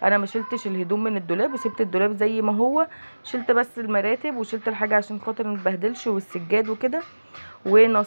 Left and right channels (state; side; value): inverted; both; correlation -1.00